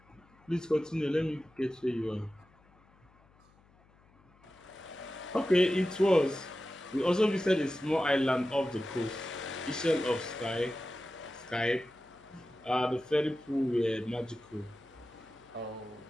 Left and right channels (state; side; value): noise; left; hum, 30 dB below the sound